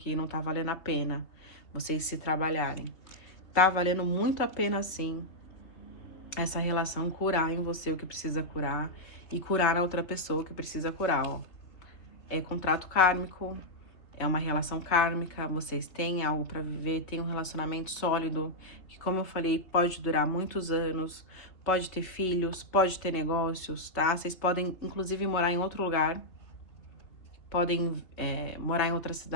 não tá valendo a pena vocês se trabalharem. Tá valendo muito a pena, sim, essa relação curar em você o que precisa curar e curar a outra pessoa o que precisa curar, ó. É contrato kármico, é uma relação kármica, vocês têm algo pra viver, tem um relacionamento sólido, que, como eu falei, pode durar muitos anos, pode ter filhos, pode ter negócios, tá? Vocês podem, inclusive, morar em outro lugar, podem morar em outra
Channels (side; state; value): right; late; 3.4 ms